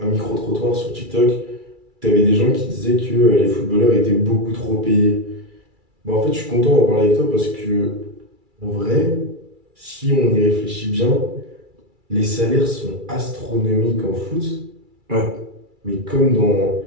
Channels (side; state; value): left; late; 2.3 ms